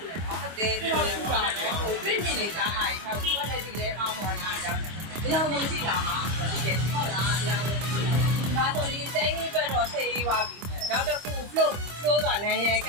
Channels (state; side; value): late; left; 25 ms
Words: ူတယ်နော်ဟုတ်တယ်ထူလဲထူတာနော်ဟိုပြင်းပြင်းနေတာဟာထောက်ကွက်လက်ဒီလဲအောင်းပေါ်လာအကြောင်းတယ်အကြောင်းလုံးရှိလာမှာဒီကဟုတ်လားအကြောင်းလုံးဒါဆိုဒီစမ်းခင်းအတွက်တော့ဆေးရေးပါပြီနောက်တစ်ခု flow ကနိုင်ရက